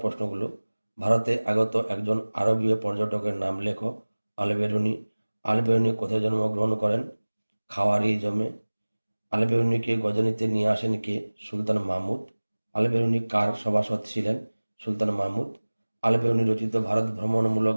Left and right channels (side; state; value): both; inverted; correlation -1.00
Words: ভারতে আগত একজন আরবীয় পর্যটকের নাম লেখো। আল-বেরুনি। আল-বেরুনি কোথায় জন্মগ্রহণ করেন? খাওয়ারিজমে। আল-বেরুনিকে গজনিতে নিয়ে আসেন কে? সুলতান মাহমুদ। আল-বেরুনি কার সভাসদ ছিলেন? সুলতান মাহমুদ। আল-বেরুনি রচিত ভারত ভ্রমণমূলক